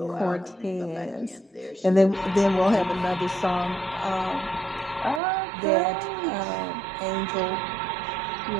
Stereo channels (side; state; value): left; drops out; at 5.2 s